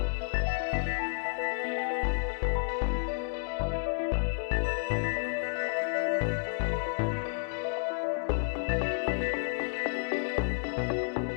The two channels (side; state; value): right; silent; digital silence